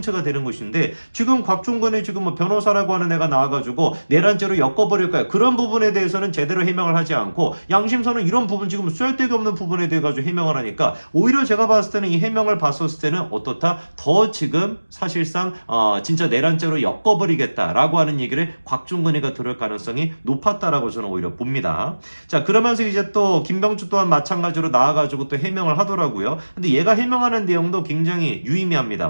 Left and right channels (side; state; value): both; inverted; correlation -1.00